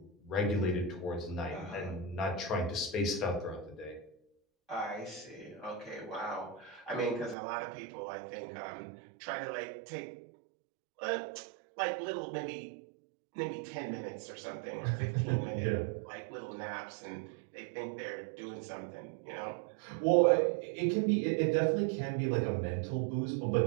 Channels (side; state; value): left; drops out; at 7.4 s